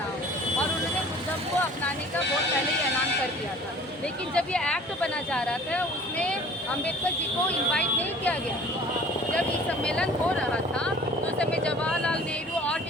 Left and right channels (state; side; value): normal; both; correlation 0.47